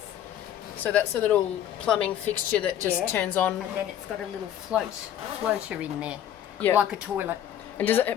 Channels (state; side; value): quieter; right; 10.9 dB